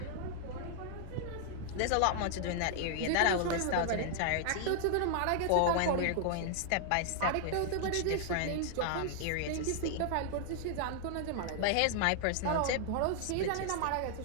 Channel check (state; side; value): different; both; correlation 0.00